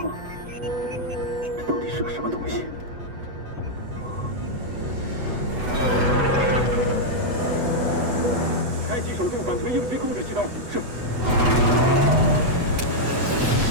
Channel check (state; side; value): late; left; 8.1 ms